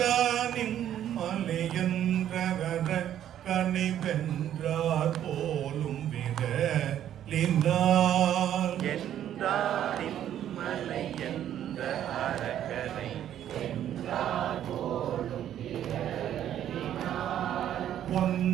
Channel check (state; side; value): quieter; left; 10.9 dB